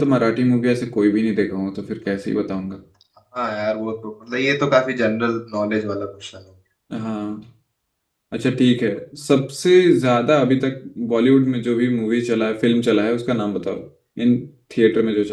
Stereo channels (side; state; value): both; identical; correlation 1.00